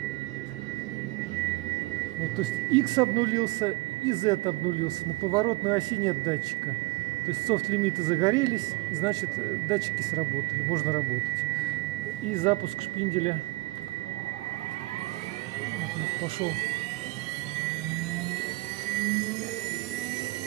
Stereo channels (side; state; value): left; quieter; 22.4 dB